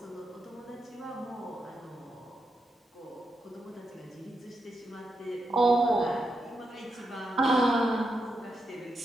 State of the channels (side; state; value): both; normal; correlation 0.85